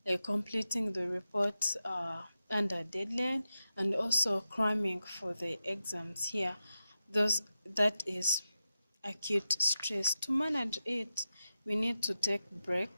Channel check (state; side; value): inverted; both; correlation -0.90